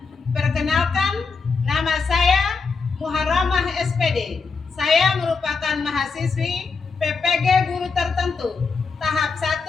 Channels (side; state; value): right; quieter; 4.8 dB